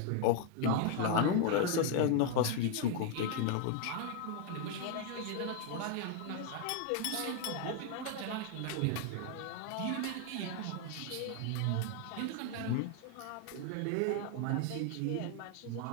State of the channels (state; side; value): different; both; correlation 0.01